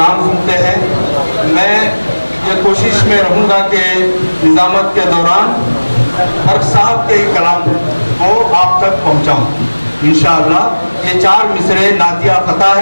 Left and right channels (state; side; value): inverted; both; correlation -1.00